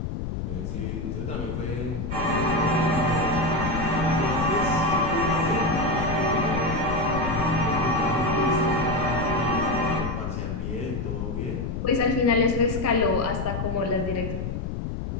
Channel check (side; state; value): left; noise; rumble, 4 dB below the sound